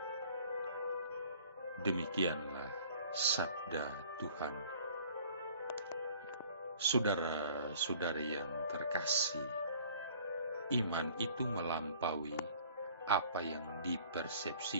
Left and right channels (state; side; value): inverted; both; correlation -0.52